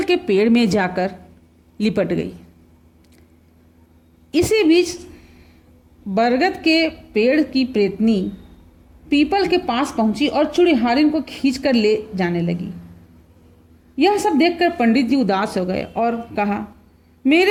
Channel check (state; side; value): identical; both; correlation 1.00